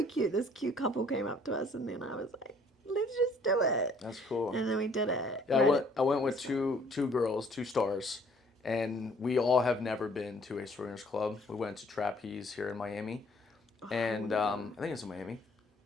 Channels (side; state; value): both; normal; correlation 0.60